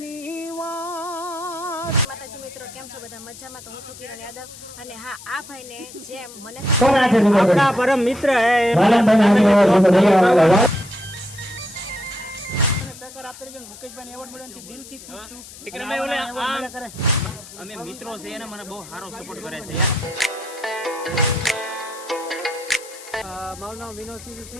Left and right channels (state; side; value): noise; left; hiss, 17 dB below the sound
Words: વાત. માતાજી મિત્રો, કેમ છો બધા? મજામાં? તો હું છું કિરણ યાદવ, અને હા, આ ભાઈને જેમ મને આપણા પરમ મિત્ર અમે મિત્રો છે એને મને બહુ સારો સપોર્ટ કરે છે. મારું નામ વિનોદ સિંહ છે